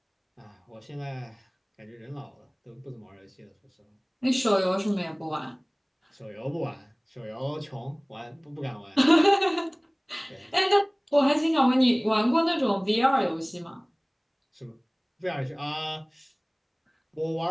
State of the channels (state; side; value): identical; both; correlation 1.00